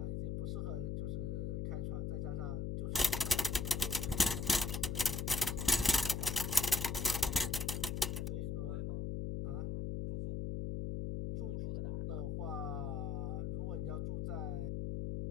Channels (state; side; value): noise; left; hum, 1 dB below the sound